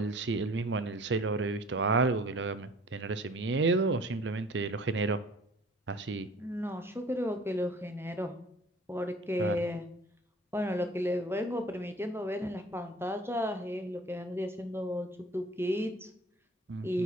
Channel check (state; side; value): normal; both; correlation 0.49